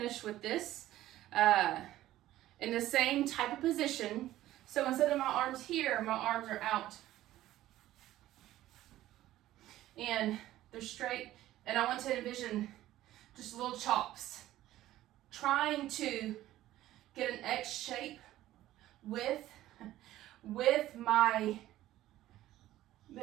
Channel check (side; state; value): left; quieter; 14.5 dB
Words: with this. In the same type of position, so instead of my arms here, my arms are out. And they're straight. And I want to envision just little chops, trying to get an X shape with